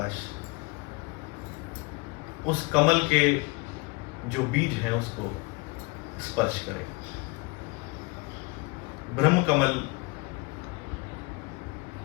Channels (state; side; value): quieter; right; 26.3 dB